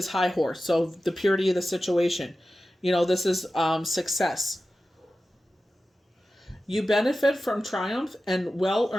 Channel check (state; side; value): normal; both; correlation 0.94